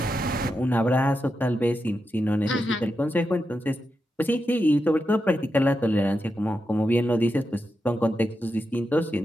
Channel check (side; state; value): both; normal; correlation 0.88